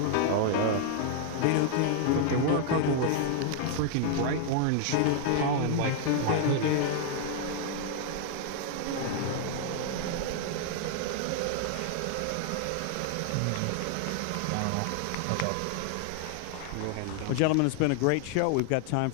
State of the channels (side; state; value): both; different; correlation 0.00